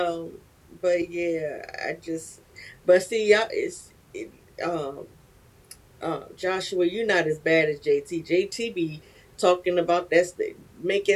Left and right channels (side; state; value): both; identical; correlation 1.00